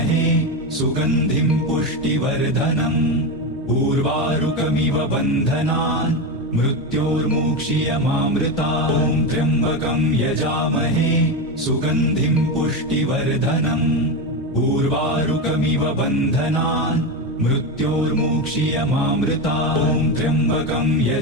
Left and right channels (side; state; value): both; normal; correlation 0.15